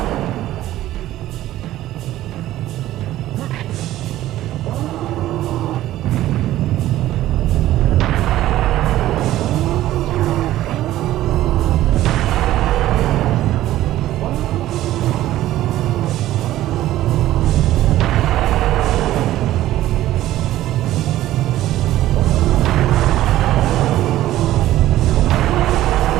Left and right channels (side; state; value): left; quieter; 14.4 dB